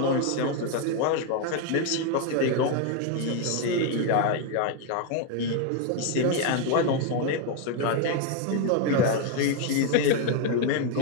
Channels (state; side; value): different; both; correlation 0.01